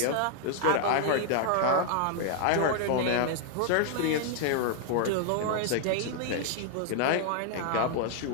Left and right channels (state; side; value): different; both; correlation 0.00